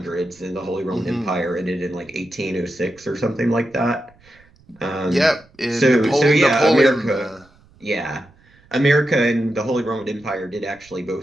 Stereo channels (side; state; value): right; noise; rumble, 29 dB below the sound